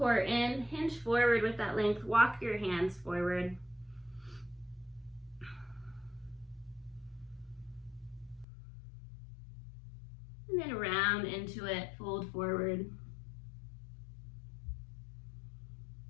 in, hinge forward with that length. Walk your hands forward. And then round into it, fold forward.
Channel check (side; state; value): right; drops out; at 8.5 s